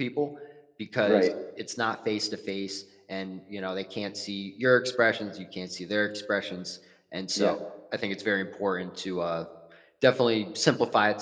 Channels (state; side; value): identical; both; correlation 1.00